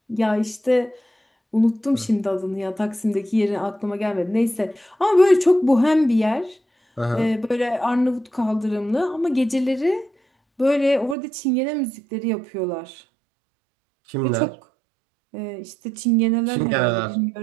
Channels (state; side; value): drops out; left; at 11.2 s